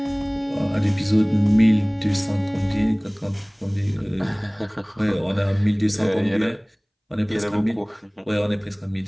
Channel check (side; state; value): both; identical; correlation 1.00